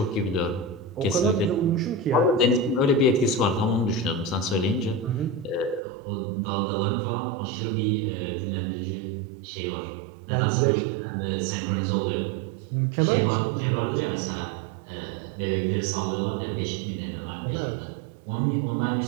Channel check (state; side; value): drops out; left; at 5.8 s